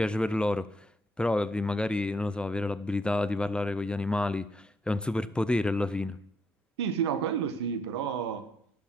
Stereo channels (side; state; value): both; normal; correlation 0.73